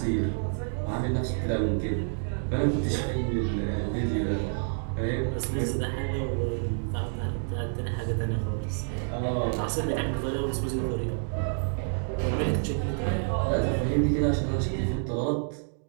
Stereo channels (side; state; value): left; silent; 59 dB below the other